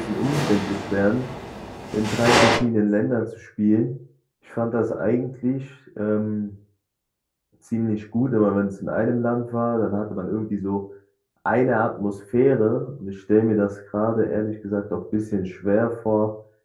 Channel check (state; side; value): identical; both; correlation 1.00